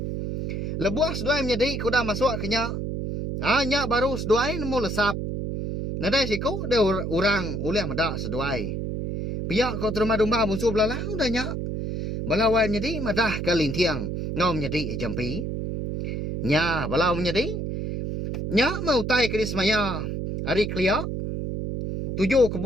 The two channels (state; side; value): noise; right; hum, 3 dB below the sound